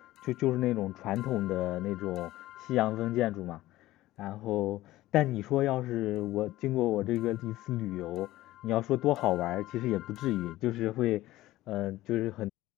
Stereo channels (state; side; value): quieter; right; 16.4 dB